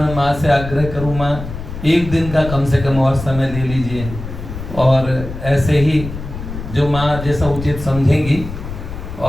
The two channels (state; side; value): noise; left; rumble, 9 dB below the sound